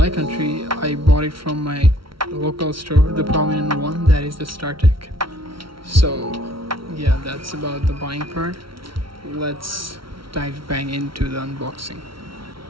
country, I bought it from my local store, the prominent one, that is the stech. So yeah, that's about the buying part. Let's dive bang into the unboxing.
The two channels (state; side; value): late; left; 0.74 ms